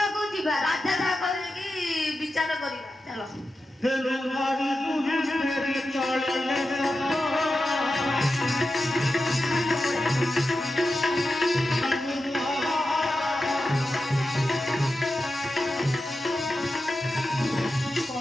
ଯିବା। ରାଜା କହିକି ବିଚାର କରିବା। ଚାଲ।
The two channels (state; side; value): normal; both; correlation 0.91